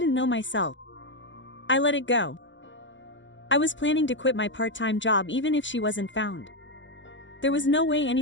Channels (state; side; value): late; right; 0.54 ms